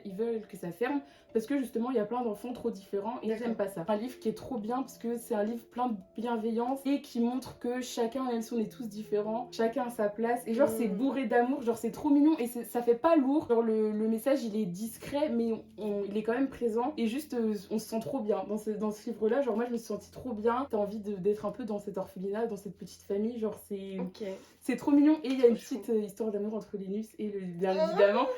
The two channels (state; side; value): identical; both; correlation 1.00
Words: ils veulent que ça ferme parce que justement il y a plein d'enfants trop différents et ils D'accord. n'aiment pas ça. Un livre qui est trop bien parce que c'est un livre plein de bienveillance et qui montre que chacun, même si on est tous différents, chacun a sa place et genre c'est bourré d'amour, genre c'est trop mignon et ça fait pas lourd. Genre le message il est discret mais il est quand même présent et juste on se sent trop bien dans ce livre-là. Genre moi je me suis sentie trop bien, t'as envie d'être un peu dans cet orphelinat, dans cette petite famille, genre Ok. c'est trop mignon. Et il y a une Trop petite histoire d'amour entre Linus et bien évidemment